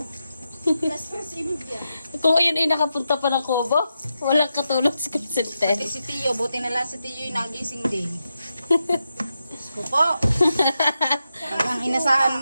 Kung ayun ay nakapunta pa ng Kubo, walang katulog si Crescente. Si Tio, buti na lang si Tio yung nagising din. Diyos ko po. Ang inasahan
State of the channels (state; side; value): inverted; both; correlation -0.87